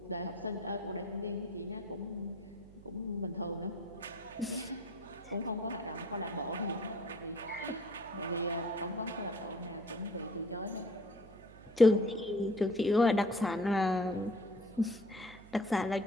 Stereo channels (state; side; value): noise; right; hum, 20 dB below the sound